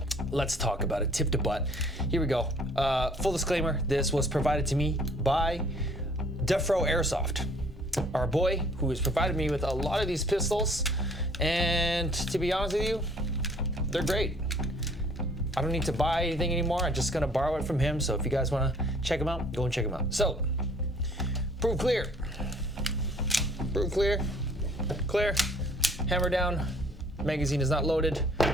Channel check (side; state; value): both; normal; correlation 0.58